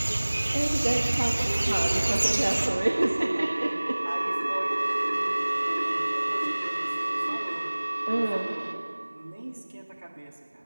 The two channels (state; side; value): inverted; both; correlation -1.00